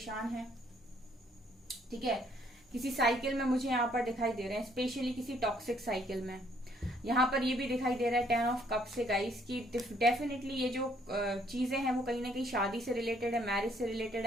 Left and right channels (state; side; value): normal; both; correlation 0.66